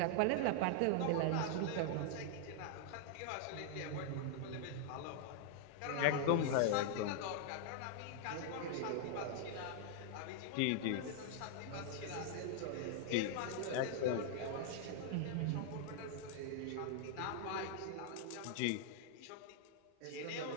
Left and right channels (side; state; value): both; different; correlation -0.01